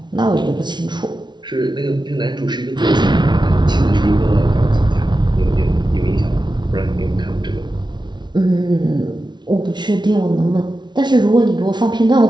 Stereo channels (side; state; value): left; late; 0.21 ms